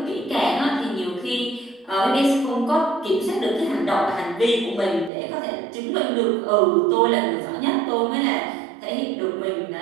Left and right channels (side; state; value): left; drops out; at 5.1 s